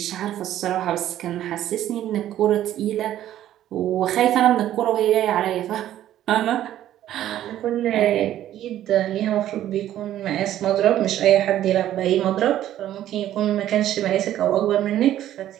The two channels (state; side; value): quieter; left; 12.3 dB